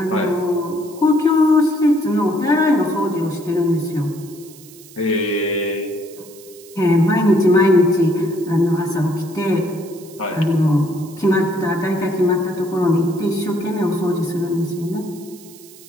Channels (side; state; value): right; noise; hiss, 21 dB below the sound